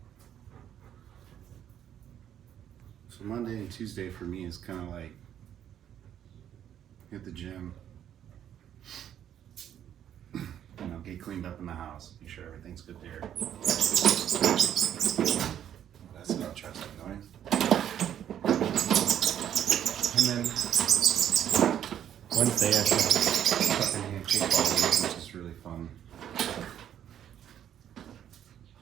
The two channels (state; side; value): quieter; left; 10.1 dB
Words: So Monday and Tuesday for me is kind of like hit the gym, get cleaned up in the house, make sure everything's good there. That's an interesting noise. And then Wednesday I start cupping hand kickball, which is really fun.